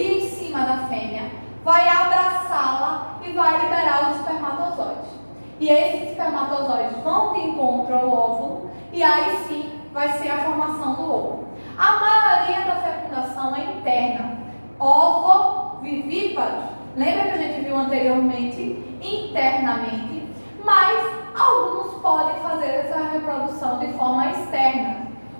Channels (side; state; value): both; inverted; correlation -1.00